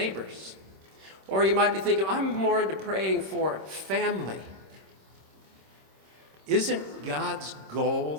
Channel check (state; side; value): late; left; 26 ms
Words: Or you might be thinking, I'm more into praying for family. Isn't God's